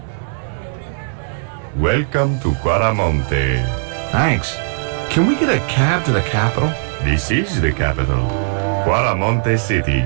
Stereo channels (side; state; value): left; silent; digital silence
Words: Welcome to Quaramonte. Thanks. Can we get a cab to the capital? This is the capital, Quaramonte City.